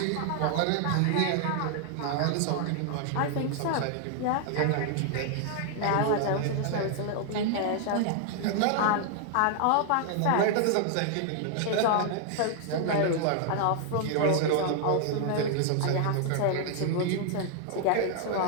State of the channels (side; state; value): both; different; correlation 0.00